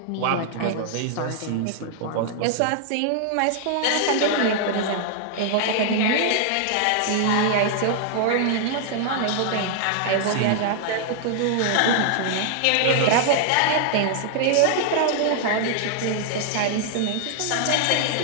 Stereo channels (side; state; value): both; different; correlation -0.01